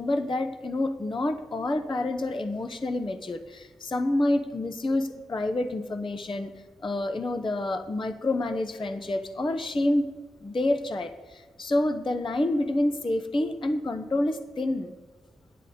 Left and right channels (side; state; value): both; normal; correlation 0.92